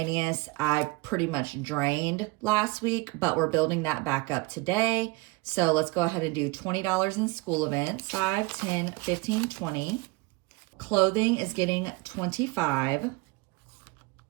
I pretty much drained last week, but we're building that back up today. So let's go ahead and do $20 in school events, 5, 10, 15, 20. Clothing is getting 25.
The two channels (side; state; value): left; quieter; 23.4 dB